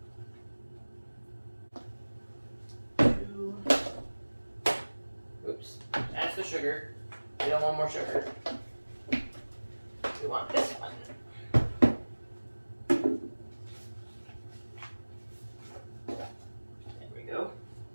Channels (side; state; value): both; inverted; correlation -1.00